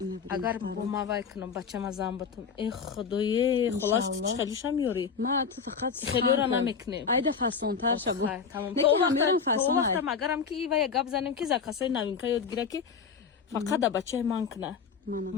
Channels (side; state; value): right; quieter; 6.0 dB